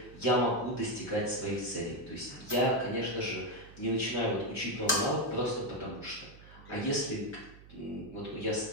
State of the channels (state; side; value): noise; right; hum, 20 dB below the sound